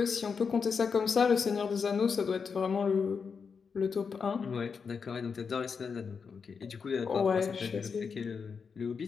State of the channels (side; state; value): right; quieter; 5.8 dB